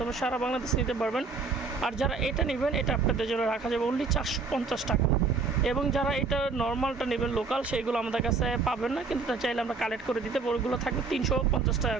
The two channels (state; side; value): quieter; left; 4.4 dB